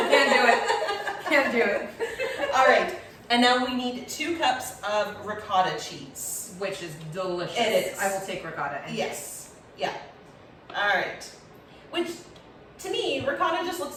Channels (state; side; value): identical; both; correlation 1.00